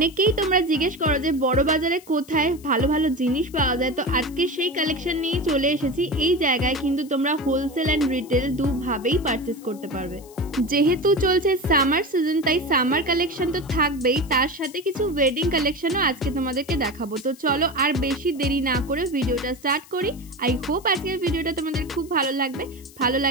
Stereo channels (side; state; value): left; noise; hiss, 23 dB below the sound